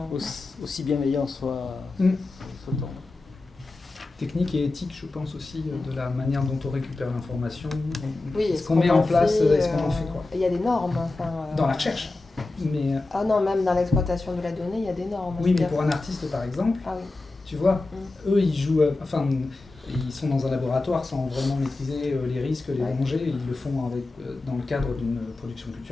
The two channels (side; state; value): right; quieter; 3.2 dB